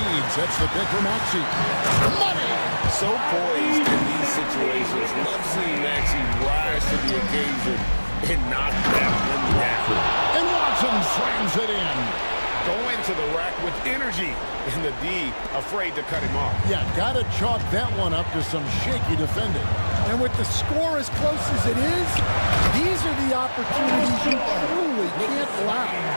sets the pick for Maxey. Money! So poised in these situations. Love seeing Maxey rise to the occasion and knock that one down. And Watson slams it in. Going to the rack with energy, and the D afraid to cut him off. Yeah, gotta chalk that one up to some shaky defending. And with the score as close as it is, these are the opportunities you truly can't allow.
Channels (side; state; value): both; inverted; correlation -1.00